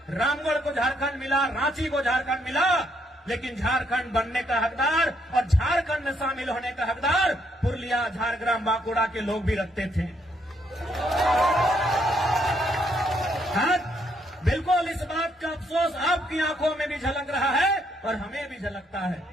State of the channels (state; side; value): normal; both; correlation 0.73